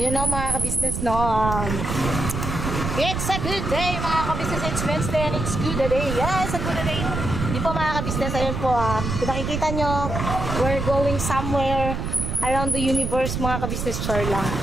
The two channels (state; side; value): noise; right; rumble, 3 dB below the sound